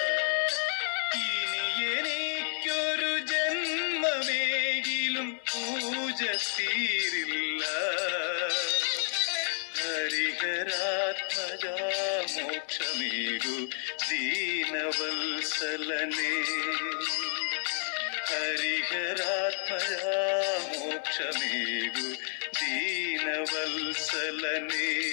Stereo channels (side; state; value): right; silent; digital silence